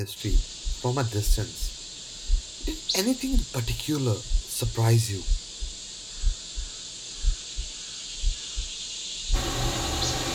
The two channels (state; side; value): identical; both; correlation 1.00